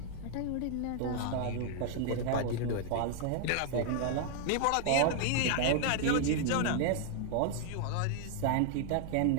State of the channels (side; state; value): both; different; correlation 0.00